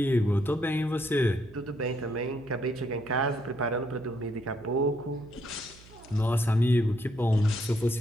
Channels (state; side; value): noise; right; hum, 22 dB below the sound